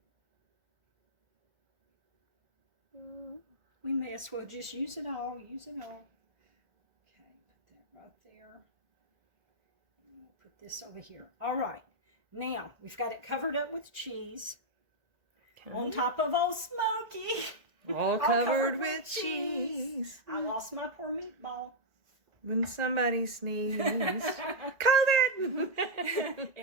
We may as well just use it all. Okay, put that right there. And we'll put this over here. All right. Now, we've got it covered up with cheese. Okay. On top of old Smoky. All covered with cheese. I lost my poor meatball. When somebody sneezed. COVID!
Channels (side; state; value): left; late; 1.9 ms